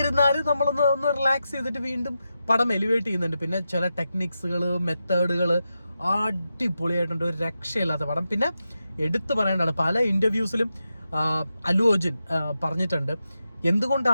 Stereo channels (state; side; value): inverted; both; correlation -0.89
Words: നമ്മളൊന്ന് റിലാക്സ് ചെയ്തിട്ട് വീണ്ടും പടം എലിവേറ്റ് ചെയ്യുന്നുണ്ട്. പിന്നെ ചില ടെക്നിക്സുകൾ, മെത്തേഡുകൾ അടിപൊളിയായിട്ടുണ്ട്. ഒരു രക്ഷയില്ലാത്ത പടം. പിന്നെ എടുത്തു പറയേണ്ടതാണ്, പല ഇന്റർവ്യൂസിലും അല്ലു അർജുൻ പറഞ്ഞിട്ടുണ്ട്